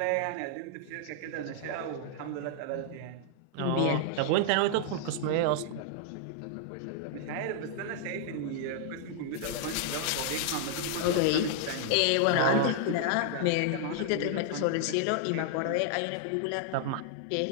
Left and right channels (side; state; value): both; different; correlation -0.01